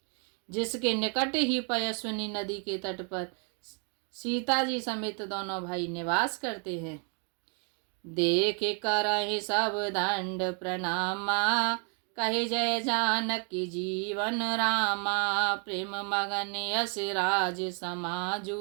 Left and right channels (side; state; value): left; quieter; 39.6 dB